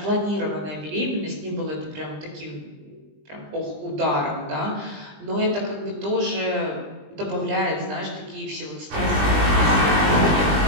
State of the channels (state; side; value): late; left; 20 ms